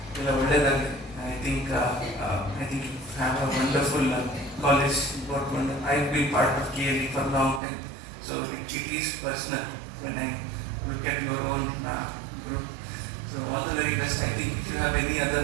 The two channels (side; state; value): left; drops out; at 7.6 s